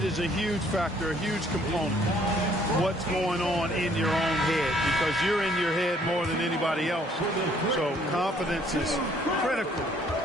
is a huge factor, a huge component. What's going on in your own head, because you're in your head more than anybody else. So confidence is critical.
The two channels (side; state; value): both; normal; correlation 0.62